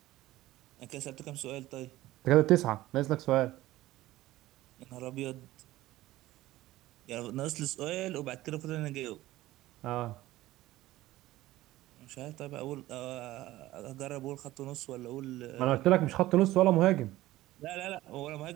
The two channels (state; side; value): quieter; left; 16.5 dB